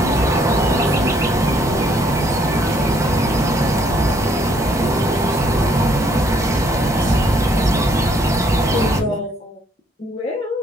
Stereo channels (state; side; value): normal; both; correlation 0.67